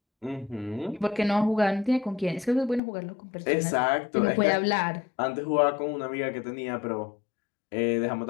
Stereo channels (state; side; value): drops out; right; at 2.8 s